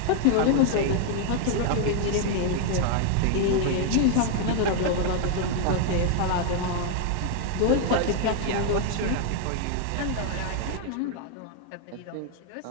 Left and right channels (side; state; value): both; different; correlation 0.00